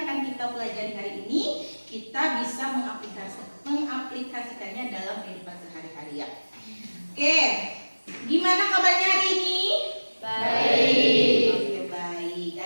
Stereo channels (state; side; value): inverted; both; correlation -1.00